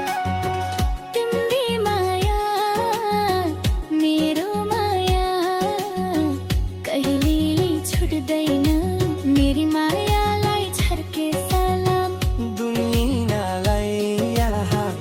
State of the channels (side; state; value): both; identical; correlation 1.00